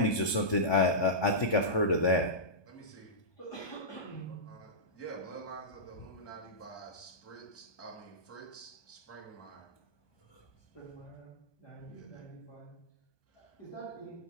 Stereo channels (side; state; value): right; late; 1.2 ms